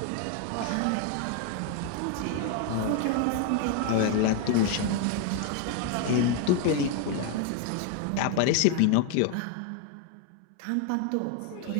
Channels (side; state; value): both; different; correlation 0.01